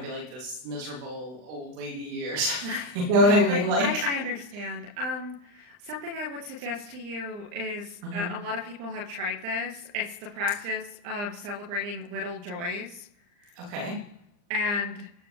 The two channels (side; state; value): left; late; 39 ms